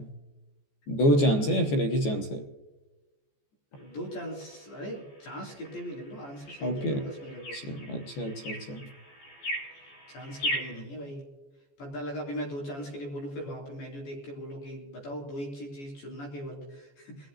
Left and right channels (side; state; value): right; late; 14 ms